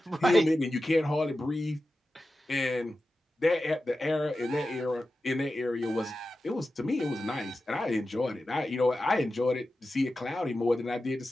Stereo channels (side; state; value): both; normal; correlation 0.93